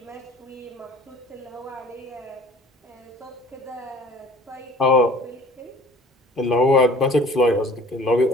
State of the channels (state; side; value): normal; both; correlation 0.48